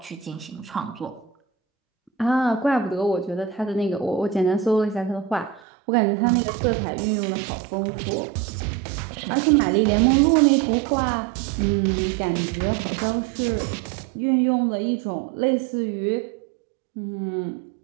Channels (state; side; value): drops out; left; at 5.6 s